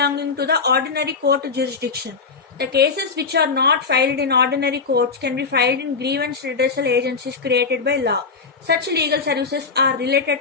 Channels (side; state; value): right; quieter; 4.8 dB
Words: to the ordinary court jurisdiction. The cases which are not filed in ordinary courts can be filed in grievance redressal agencies created by law. Such legal services are related